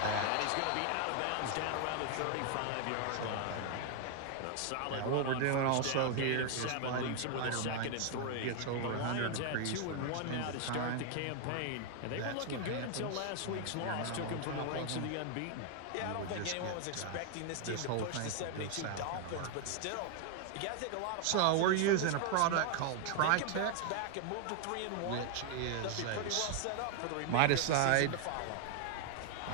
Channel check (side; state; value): both; different; correlation 0.00